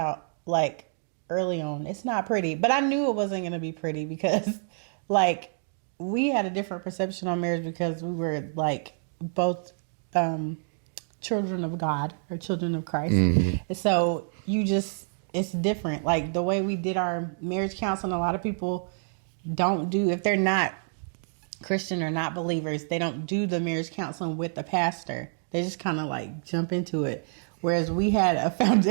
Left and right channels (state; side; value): silent; left; digital silence